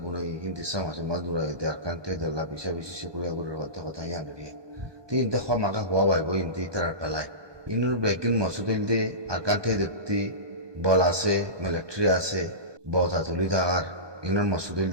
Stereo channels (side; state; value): left; late; 1.2 ms